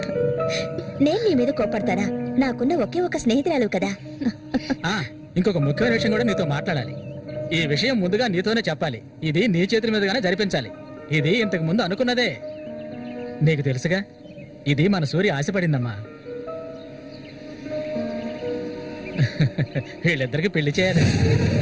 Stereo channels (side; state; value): both; identical; correlation 1.00